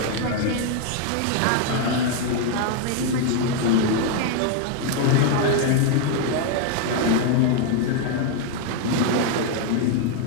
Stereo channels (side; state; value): both; different; correlation 0.00